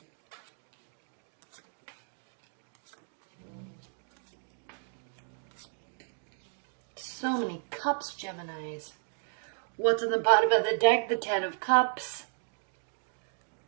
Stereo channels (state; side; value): silent; left; digital silence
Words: So many cups, Geminis. What's on the bottom of the deck? The Ten of Cups.